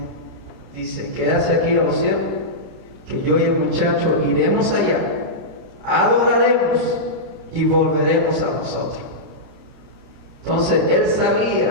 Dice: quédase aquí a los siervos, que yo y el muchacho iremos allá, adoraremos y volveremos a vosotros. Entonces él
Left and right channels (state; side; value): late; left; 29 ms